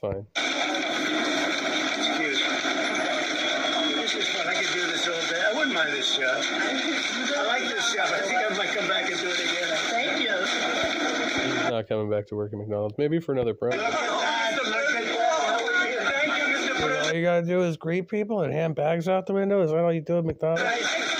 Excuse me. This is fun. I could do this all day. I wouldn't mind this job. I like this job. I think I might come back and do it again. Thank you. She's not coming back to work at McDonald's. Maybe for another program. Look at that. Look at that. Thank you, Mr. President. All you gotta do is greet people and hand bags out the window. Is that all you do at McDonald's? You made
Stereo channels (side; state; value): both; identical; correlation 1.00